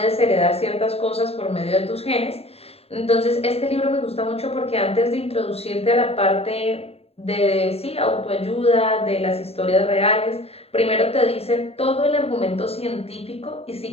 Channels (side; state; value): right; late; 0.29 ms